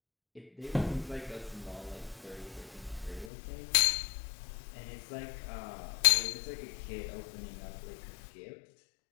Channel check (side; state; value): right; drops out; at 3.3 s